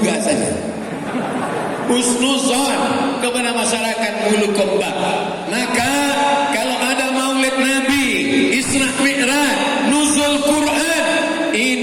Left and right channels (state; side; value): identical; both; correlation 1.00